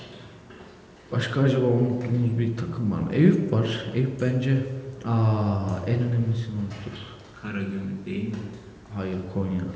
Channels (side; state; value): both; identical; correlation 1.00